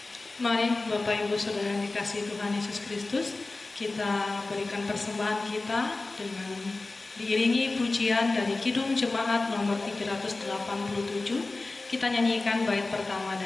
Mari Bapak Ibu Saudara yang dikasihi Tuhan Yesus Kristus, kita berikan persembahan kita dengan diiringi pujian dari Kidung Jemaat nomor 387. Kita nyanyikan bait pertama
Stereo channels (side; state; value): right; quieter; 3.3 dB